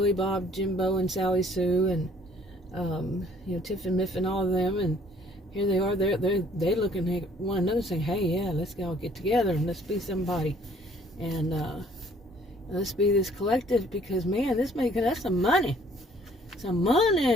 Bob, Jimbo, and Sally Sue, and Tiff and Miff and all of them, and here they are, they're looking at one another saying, hey, yeah, let's all get together and let's be somebody. And Let's be this collective, because man, this making us some money. Some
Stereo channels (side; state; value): both; normal; correlation 0.58